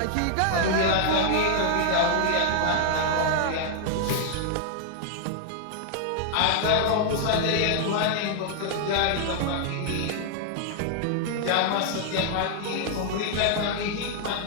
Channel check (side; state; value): both; different; correlation -0.01